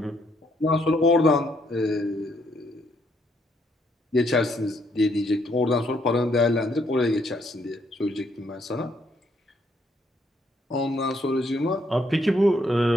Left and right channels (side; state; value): both; normal; correlation 0.72